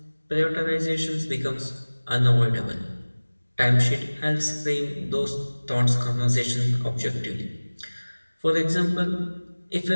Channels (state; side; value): inverted; both; correlation -1.00